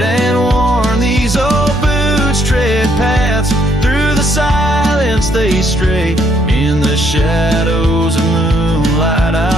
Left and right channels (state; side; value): normal; both; correlation 0.70